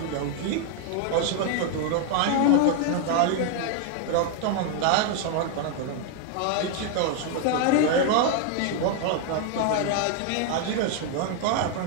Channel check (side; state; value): both; different; correlation 0.00